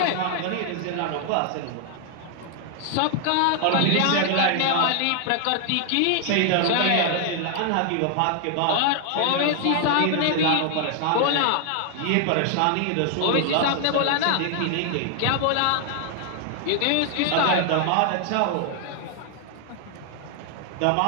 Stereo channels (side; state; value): both; different; correlation 0.00